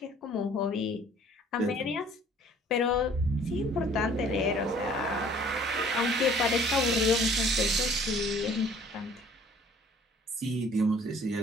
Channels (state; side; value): normal; both; correlation 0.54